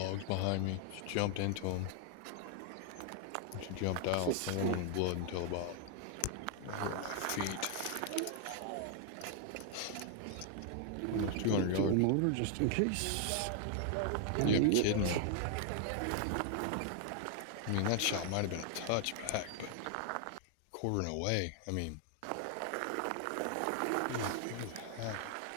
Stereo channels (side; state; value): both; different; correlation 0.00